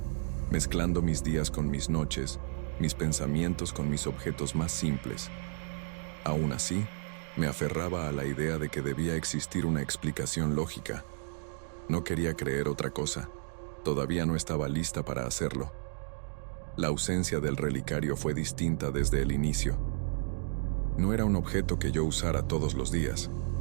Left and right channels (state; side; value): silent; left; digital silence